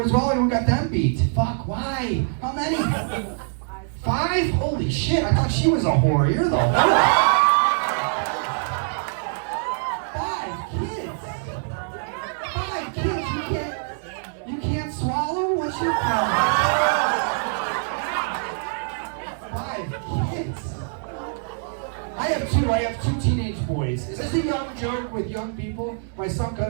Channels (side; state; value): left; silent; digital silence